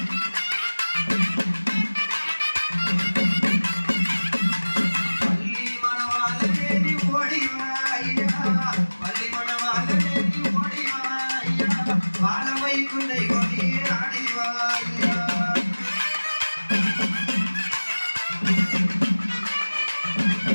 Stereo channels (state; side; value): inverted; both; correlation -1.00